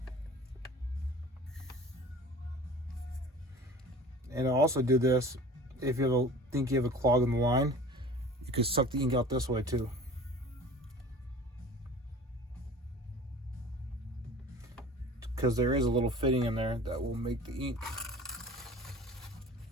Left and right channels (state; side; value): normal; both; correlation 0.42